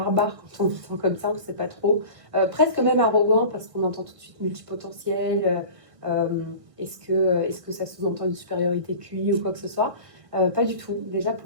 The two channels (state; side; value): late; left; 1.7 ms